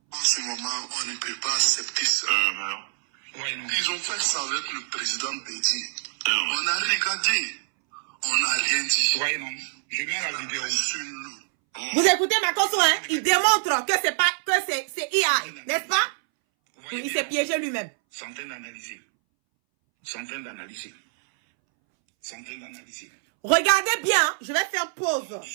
En ce moment, on ne peut pas accepter ça. Ouais, non. Ils ont fait ça avec le président Bédi. On a regardé. On n'a rien dit. Ouais, non. Je mets la vidéo. Vous écoutez Makosso, hein? Il démontre que c'est pas, que c'est IA, n'est-ce pas? Il s'est piégé lui-même. Centaines d'analyser. Centaines d'analyser. Centaines d'analyser. Regardez bien, hein. Je vais faire pause. Ne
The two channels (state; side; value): silent; left; 61 dB below the other